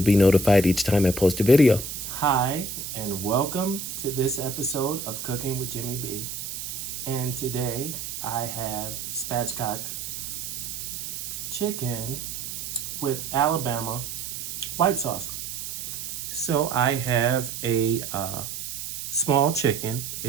be notified each time I post a video. Hi, and welcome to this episode of Cooking with Jimmy B. And today I have spatchcock chicken with Alabama white sauce. So I have a small chicken.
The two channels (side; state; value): right; noise; hiss, 6 dB below the sound